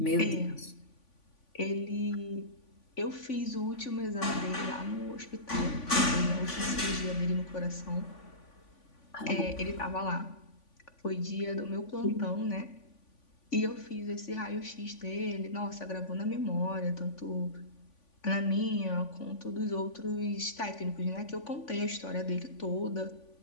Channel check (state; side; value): late; right; 3.5 ms